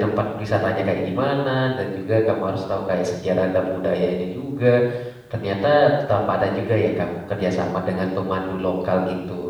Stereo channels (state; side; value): identical; both; correlation 1.00